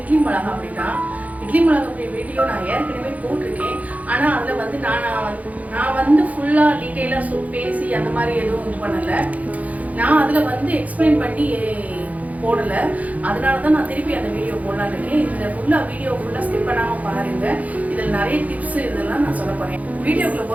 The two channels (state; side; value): late; left; 0.072 ms